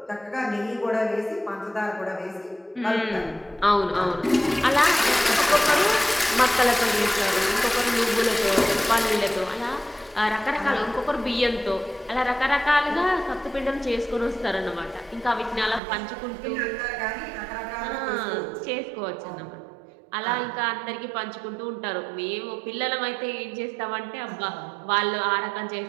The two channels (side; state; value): left; drops out; at 15.8 s